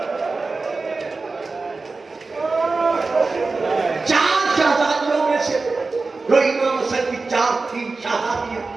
4 شہزادیوں میں سے جو امام حسن کی 4 تھی شہزادیاں،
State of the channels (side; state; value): left; quieter; 3.9 dB